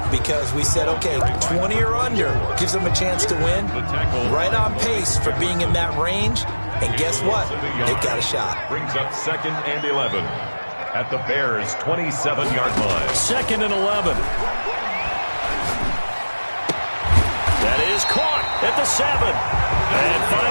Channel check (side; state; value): both; inverted; correlation -1.00